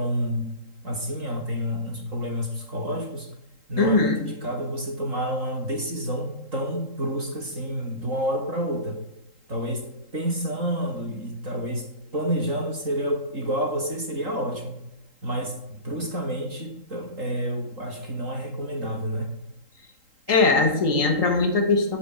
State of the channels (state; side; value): late; left; 3.8 ms